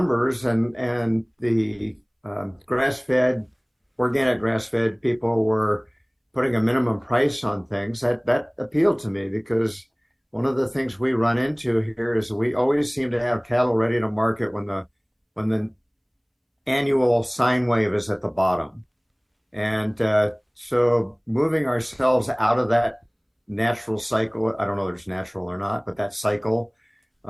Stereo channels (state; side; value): identical; both; correlation 1.00